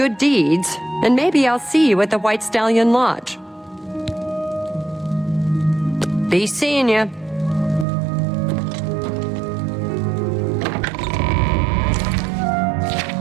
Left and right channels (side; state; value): left; drops out; at 7.9 s